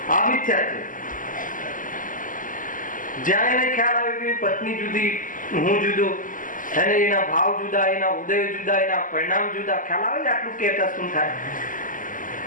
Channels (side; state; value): right; late; 0.38 ms